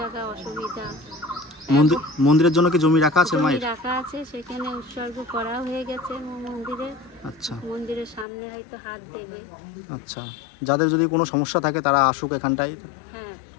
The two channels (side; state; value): right; drops out; at 8.2 s